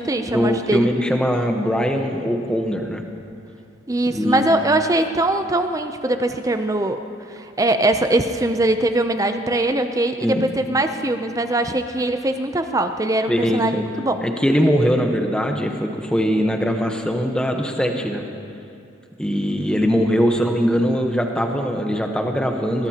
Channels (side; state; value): both; normal; correlation 0.72